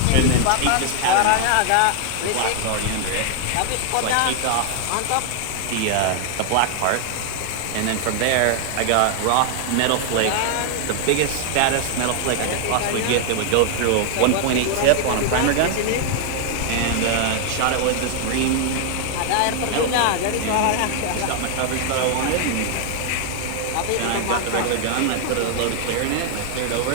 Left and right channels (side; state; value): both; different; correlation 0.00